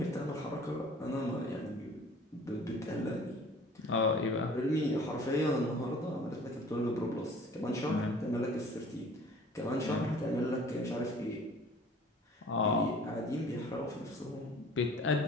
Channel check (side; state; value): both; normal; correlation 0.49